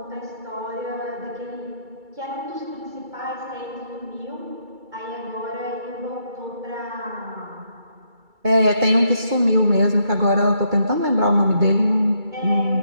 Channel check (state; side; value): late; left; 2.3 ms